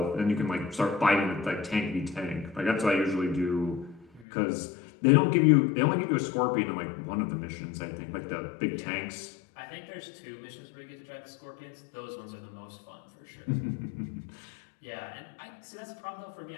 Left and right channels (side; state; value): right; drops out; at 4.2 s